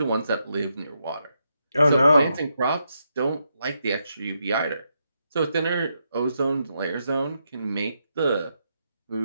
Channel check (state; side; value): inverted; both; correlation -0.81